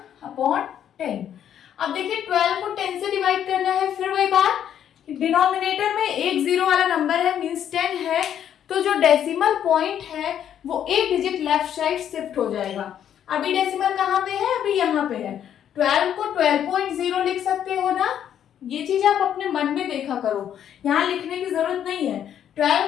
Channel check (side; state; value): right; quieter; 9.7 dB